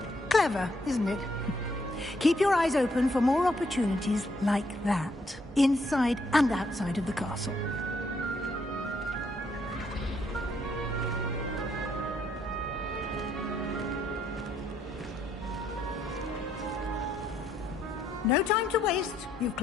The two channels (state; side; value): normal; both; correlation 0.72